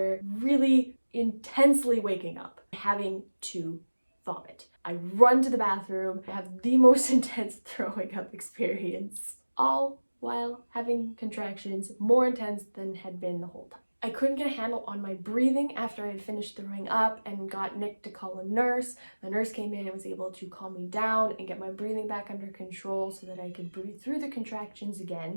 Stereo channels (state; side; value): inverted; both; correlation -1.00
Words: really intensely waking up, having to vomit. I run to the bathroom, have the most intense throwing up experience, all while having contractions more intense than had been the whole time. I couldn't get a handle on my breathing after I had finished throwing up and got Nick to call a nurse. The nurse came in and was able to calm me down and get my breathing back under control so that I could breathe through the contractions